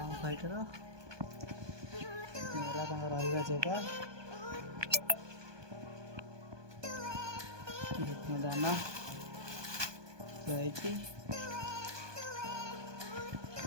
ଆମ ଫାଇଟର, ଇଏ ହେଲା ତାଙ୍କ ରହିବା ଜାଗା, ଦାନା ଥୁଆହେଇଛି,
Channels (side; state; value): left; late; 1.2 ms